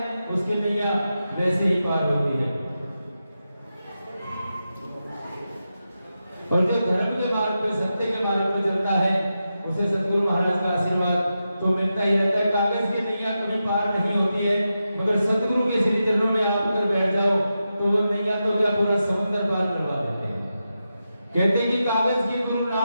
उसकी नैया वैसे ही पार होती है। और जो धर्म के मार्ग पे, सत्य के मार्ग पे चलता है उसे सतगुरु महाराज का आशीर्वाद तो मिलता ही रहता है। कागज की नैया कभी पार नहीं होती है, मगर सतगुरु के श्री चरणों में आप अगर बैठ जाओ तो वो नैया तो क्या पूरा समुद्र पार करवा देते हैं। कहते हैं कि कागज की गुरु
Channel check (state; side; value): inverted; both; correlation -0.89